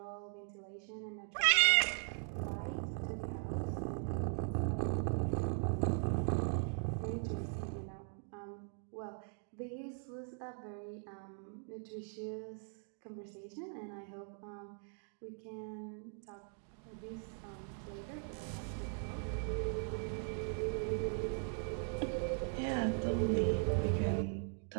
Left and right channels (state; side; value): silent; left; 51 dB below the other